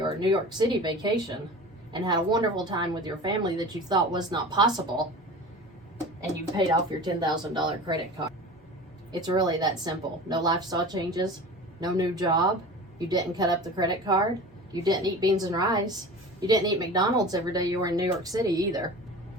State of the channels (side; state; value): both; normal; correlation 0.36